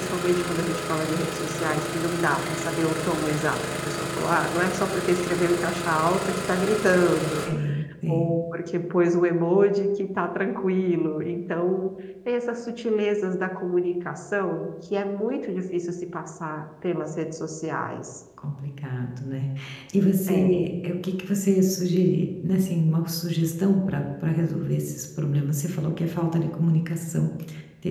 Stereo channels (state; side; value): identical; both; correlation 1.00